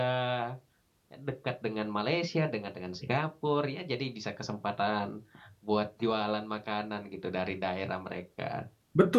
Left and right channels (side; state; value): both; identical; correlation 1.00